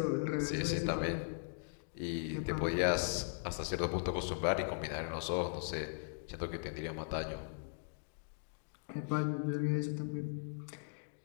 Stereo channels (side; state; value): right; silent; digital silence